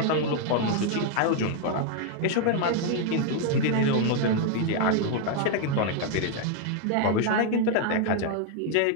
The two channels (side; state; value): both; different; correlation 0.00